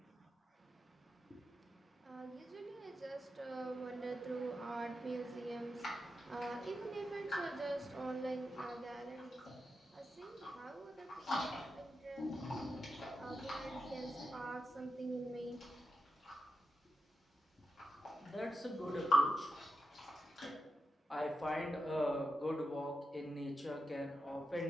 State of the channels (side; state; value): both; normal; correlation 0.88